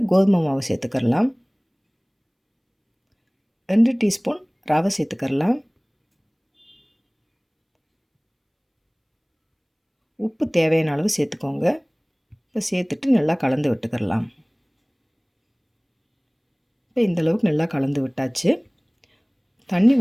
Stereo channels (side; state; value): both; identical; correlation 1.00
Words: கோதுமை மாவு சேர்த்துக்கலாம். 2 டீஸ்பூன் ரவை சேர்த்துக்கலாம். உப்பு தேவையான அளவு சேர்த்துக்கோங்க. இப்போ சேர்த்துட்டு நல்லா கலந்து விட்டுக்கிடலாம். இப்போ இந்தளவுக்கு நல்லா கலந்து விட்டாச்சு. தண்ணி